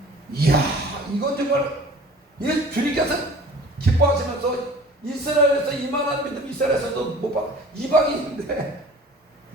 이야, 이건 정말, 주님께서 기뻐하시면서 이스라엘에서 이만한 믿음, 이스라엘에서도 못 받아. 이방인인데,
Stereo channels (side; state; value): both; normal; correlation 0.45